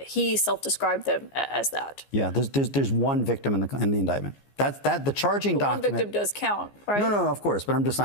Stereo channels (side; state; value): right; late; 14 ms